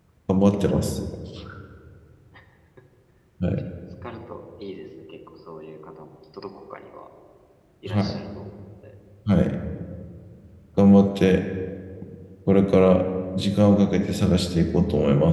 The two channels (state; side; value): identical; both; correlation 1.00